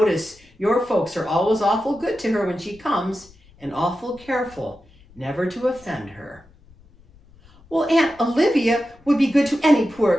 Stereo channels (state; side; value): noise; left; rumble, 27 dB below the sound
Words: your folks are always awful good to her when she comes, and awful careful never to offend her. Well, Aunt Olivia would be good to any